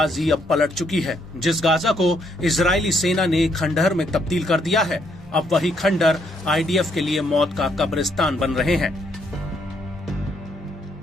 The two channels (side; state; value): both; normal; correlation 0.72